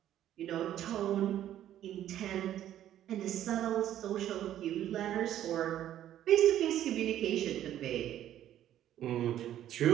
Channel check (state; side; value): quieter; left; 11.8 dB